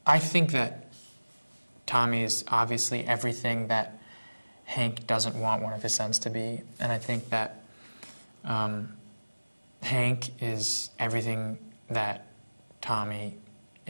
I think that Tommy is obviously everything that Hank doesn't want one of his sons to be, and I think that Hank is everything that Tommy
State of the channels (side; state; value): both; inverted; correlation -1.00